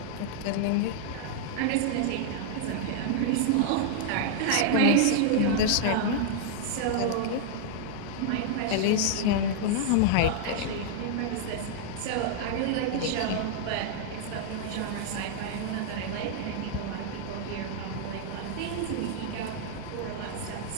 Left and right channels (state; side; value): different; both; correlation -0.01